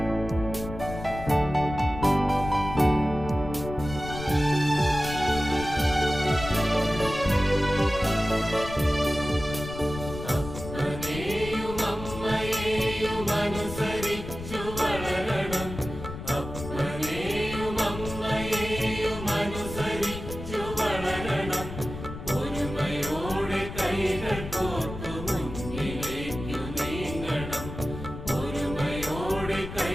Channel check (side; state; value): left; noise; rumble, 10 dB below the sound